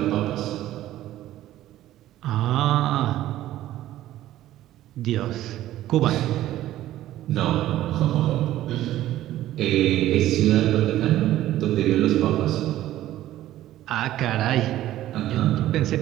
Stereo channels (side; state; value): left; quieter; 14.0 dB